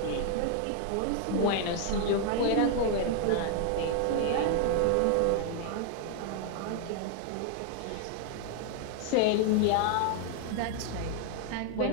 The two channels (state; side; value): different; both; correlation 0.00